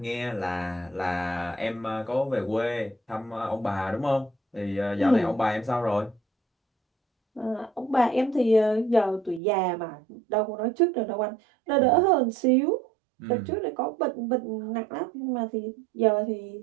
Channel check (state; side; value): drops out; left; at 9.4 s